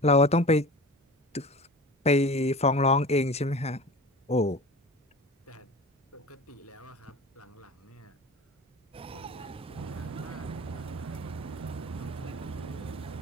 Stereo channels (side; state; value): both; normal; correlation 0.36